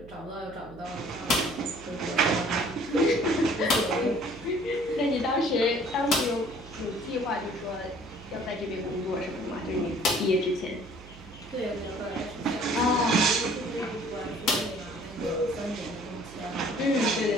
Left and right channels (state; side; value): noise; right; hum, 19 dB below the sound